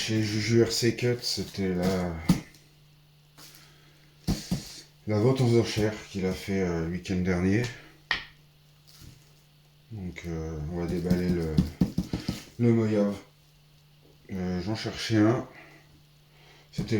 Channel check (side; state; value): both; identical; correlation 1.00